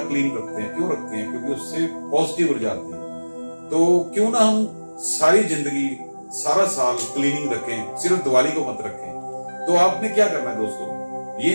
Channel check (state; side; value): inverted; both; correlation -1.00